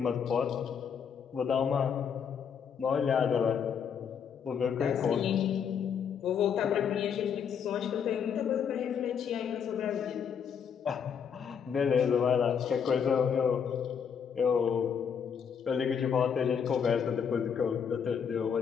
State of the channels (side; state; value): right; quieter; 7.3 dB